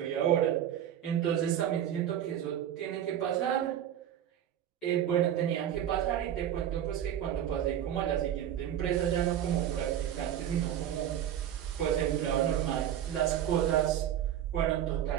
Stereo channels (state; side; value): quieter; left; 10.5 dB